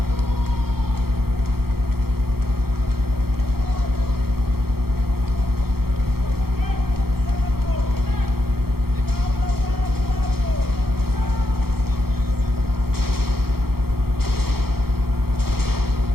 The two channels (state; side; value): late; left; 0.94 ms